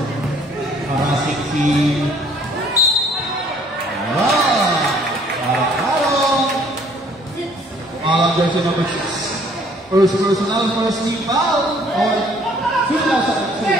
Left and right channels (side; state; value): both; normal; correlation 0.59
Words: parasik si jersey number 6. First personal, first team foul on